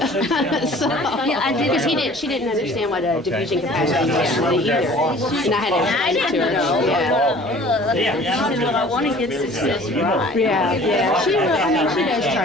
yeah, I did because she didn't understand what a diffusion capacity was really either, and I had to explain it to her. Yeah. She said, well, I want to get this right. Yeah. She does try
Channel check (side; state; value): both; normal; correlation 0.49